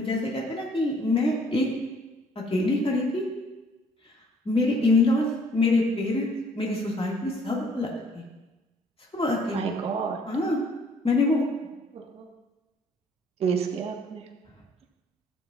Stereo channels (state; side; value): normal; both; correlation 0.60